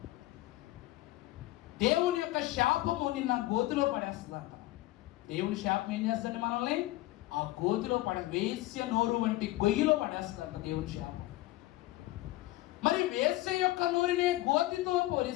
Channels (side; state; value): right; quieter; 17.7 dB